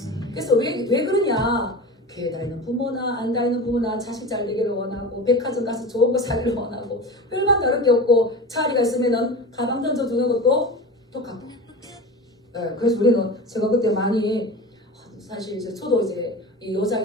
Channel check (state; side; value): normal; both; correlation 0.31